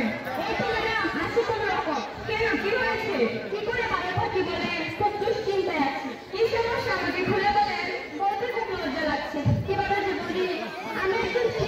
এই তো ম্যাডাম আছি কোনো রকম। কেন, কি হয়েছে? কি করে ভালো থাকি বলেন? খুব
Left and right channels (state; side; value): identical; both; correlation 1.00